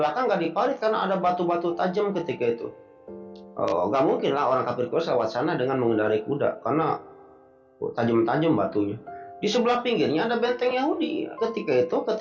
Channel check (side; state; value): both; identical; correlation 1.00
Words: nggak diparit karena ada batu-batu tajam ketika itu. Nggak mungkin lah orang kafir Quraisy lewat sana dengan mengendarai kuda karena tajam-tajam batunya. Di sebelah pinggirnya ada benteng Yahudi.